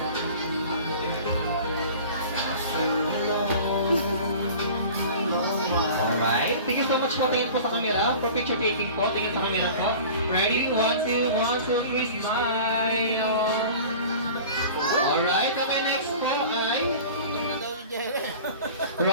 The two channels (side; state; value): both; inverted; correlation -0.41